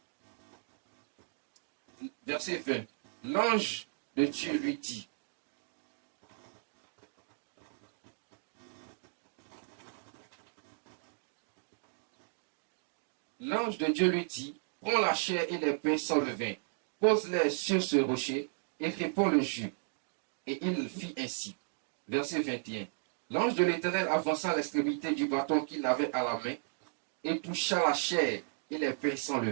Verset 20. L'ange de Dieu lui dit, l'ange de Dieu lui dit, prends la chair et les pains sans levain, pose-les sur ce rocher et répands le jus. Et il fit ainsi. Verset 21. L'ange de l'Éternel avança l'extrémité du bâton qu'il avait à la main et toucha la chair et les pains sans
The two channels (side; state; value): left; silent; digital silence